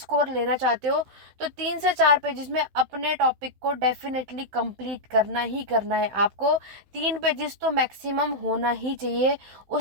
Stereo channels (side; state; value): left; late; 16 ms